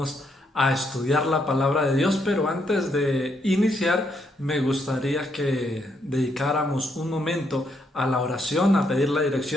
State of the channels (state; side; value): normal; both; correlation 0.75